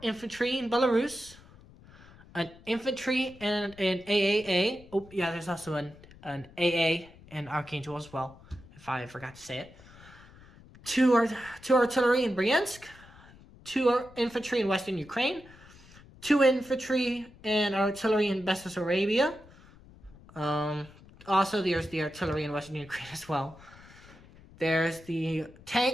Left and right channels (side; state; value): left; noise; rumble, 22 dB below the sound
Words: infantry in Belarus, an infantry and an AAA. Oh, yeah, there's also an AA in Archangel as well, if I forgot to say it. 2 artillery in Bryansk, 2 infantry in Western Ukraine, 2 infantry and artillery in Bessarabia. Also, there's the artillery in Western Ukraine as well. There's the